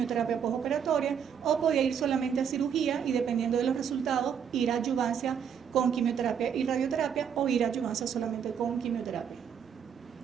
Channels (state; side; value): quieter; left; 7.8 dB